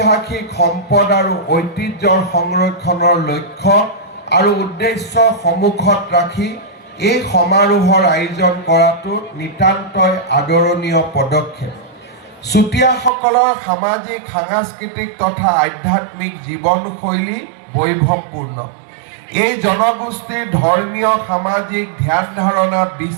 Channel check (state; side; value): drops out; left; at 13.1 s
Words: সম্পদ আৰু ঐতিহ্যৰ সংৰক্ষণৰ লক্ষ্য আৰু উদ্দেশ্য সন্মুখত ৰাখি এই সমাৰোহৰ আয়োজন কৰাটো নিতান্তই আদৰণীয় পদক্ষেপ। চুতীয়াসকলৰ সামাজিক, সাংস্কৃতিক তথা আধ্যাত্মিক জীৱনশৈলী বৈভৱপূৰ্ণ। এই জনগোষ্ঠীৰ ধৰ্মীয়, সামাজিক ধ্যান ধাৰণা,